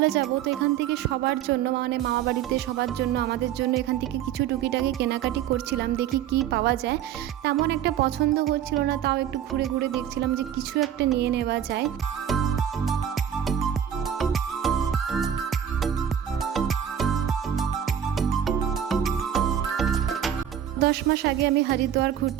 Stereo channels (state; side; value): quieter; left; 9.5 dB